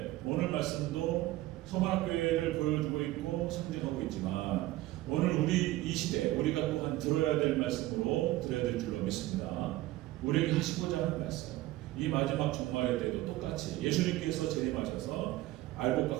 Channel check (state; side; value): quieter; left; 16.9 dB